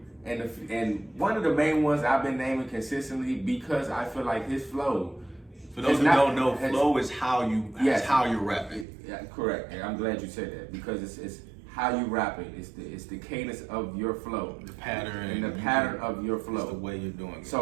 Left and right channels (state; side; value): drops out; left; at 8.8 s